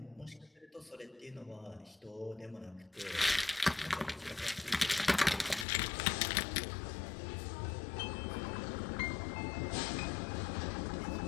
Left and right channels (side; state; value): right; drops out; at 5.7 s